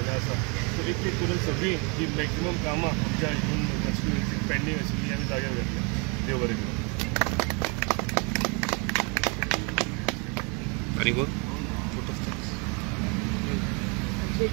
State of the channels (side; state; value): left; quieter; 32.6 dB